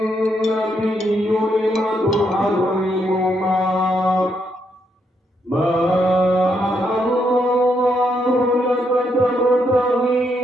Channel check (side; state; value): both; normal; correlation 0.77